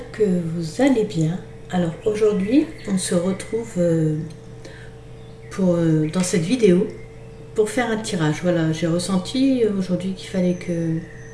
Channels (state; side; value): identical; both; correlation 1.00